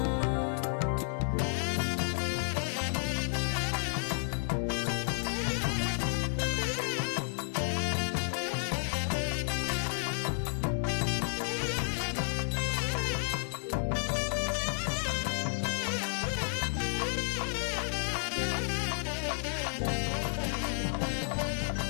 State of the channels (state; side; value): silent; right; 57 dB below the other